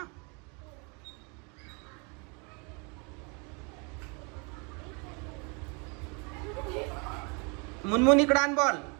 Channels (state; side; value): quieter; left; 32.4 dB